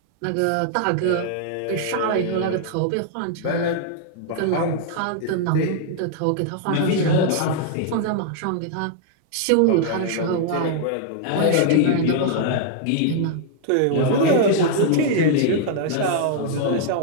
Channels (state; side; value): different; both; correlation 0.00